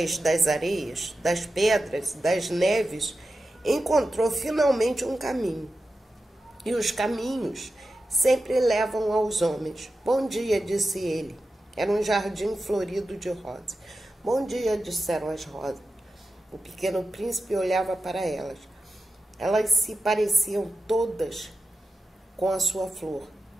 das areias, das pedras, das neves, encontrou finalmente um caminho. E os caminhos sempre levam aos homens. Bom dia, disse ele. Era um jardim florido de rosas. Bom dia, disseram as rosas. O pequeno príncipe olhava para elas. Elas se pareciam todas com a sua flor.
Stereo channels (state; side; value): normal; both; correlation 0.92